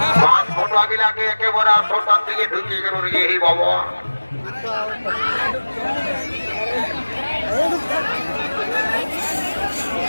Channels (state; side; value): inverted; both; correlation -1.00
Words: পাঁচ ফটো আগিলাকে একেবারে আটটার দিকে ঢুকিয়ে গেল রে এই বাবা